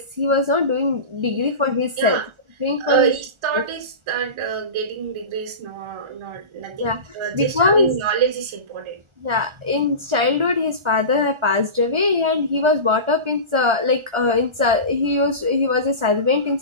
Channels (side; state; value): left; late; 1.4 ms